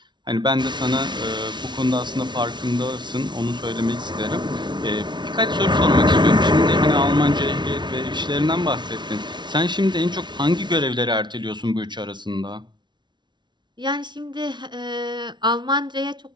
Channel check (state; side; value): late; left; 0.22 ms